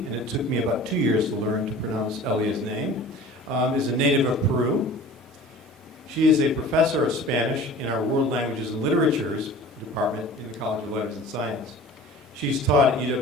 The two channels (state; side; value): normal; both; correlation 0.42